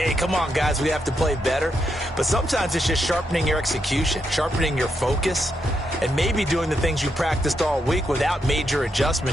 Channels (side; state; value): both; normal; correlation 0.81